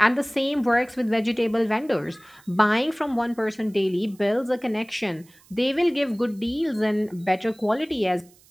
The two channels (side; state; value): right; noise; hiss, 28 dB below the sound